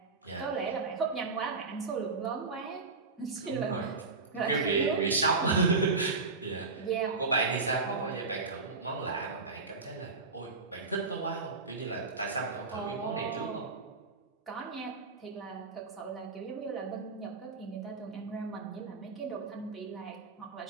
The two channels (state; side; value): quieter; left; 4.1 dB